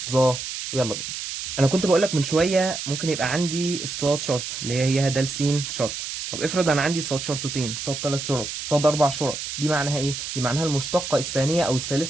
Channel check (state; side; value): noise; right; hiss, 6 dB below the sound